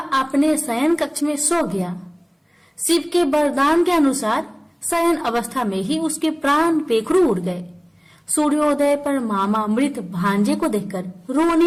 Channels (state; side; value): identical; both; correlation 1.00